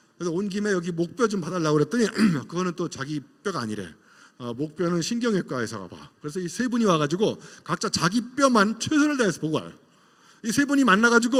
그래서 온 김에 여기 목뼈 좀 봐달라고 그랬더니 그거는 또 자기 뼈가 아니래. 목뼈는 신경외과 의사가 봐. 그래서 이 세 분이 와가지고 각자 자기 뼈만 최선을 다해서 보고 와요. 이 세 분이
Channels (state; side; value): identical; both; correlation 1.00